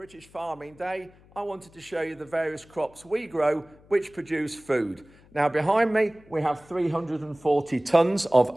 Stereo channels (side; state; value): left; noise; hum, 26 dB below the sound